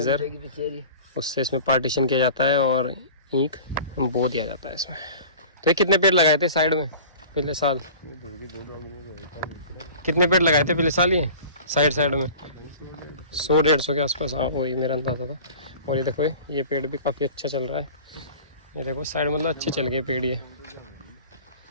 उससे इसमें पार्टीशन किया जाता है और ईंख बो दिया जाता है इसमें। तो ये कितने पेड़ लगाए थे साइड में पिछले साल? कितने पेड़ लगाए थे पिछले साल ये साइड में? 100-150 के आसपास, हाँ वही मेरा अंदाज़ा था। और ये देखो ये पेड़ भी काफ़ी अच्छा चल रहा है। ये देखो साइड मतलब अच्छे चल गए पेड़ ये।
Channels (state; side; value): inverted; both; correlation -0.42